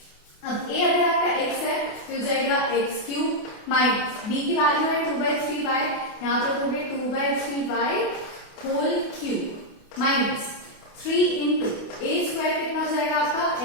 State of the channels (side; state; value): right; late; 28 ms